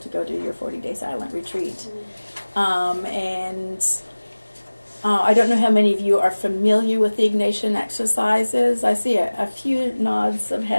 to go do your 40-day silent retreat. I don't know how many of you are familiar with the Ignatian exercises. I see a few nods of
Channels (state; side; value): inverted; both; correlation -1.00